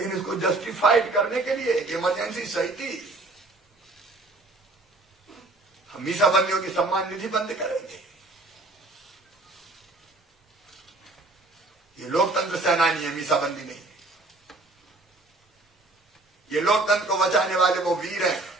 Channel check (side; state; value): left; quieter; 3.0 dB